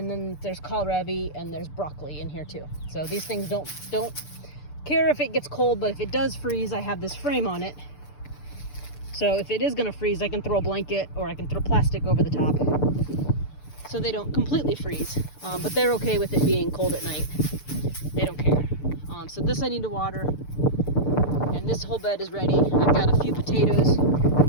then there's kohlrabi and there's broccoli in here too. So these things don't care if it gets cold, but if it does freeze, I have this frame on it. So if it is gonna freeze, I can throw a blanket or I can throw plastic over the top so they don't completely freeze. But they're okay with it being cold at night. They don't care. So this I need to water, and this whole bed is ready. I've got a few potatoes.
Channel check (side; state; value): right; late; 6.8 ms